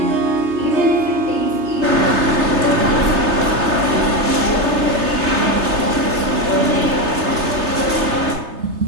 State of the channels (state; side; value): late; left; 3.3 ms